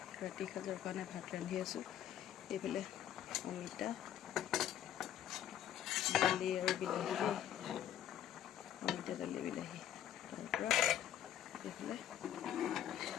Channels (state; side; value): quieter; right; 10.7 dB